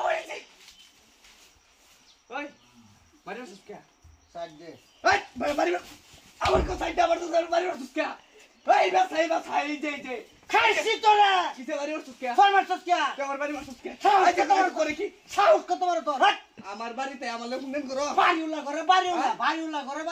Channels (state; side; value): identical; both; correlation 1.00